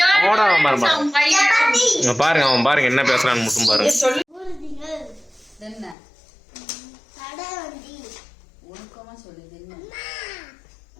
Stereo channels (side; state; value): right; drops out; at 6.0 s